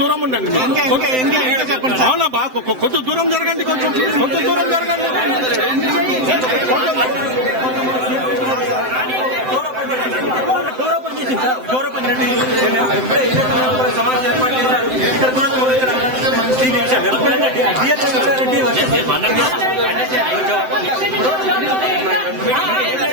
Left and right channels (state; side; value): late; left; 7.8 ms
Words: ఉండండి. అవునా బా కొంచెం దూరం జరగండి. కొంచెం దూరం జరగండి.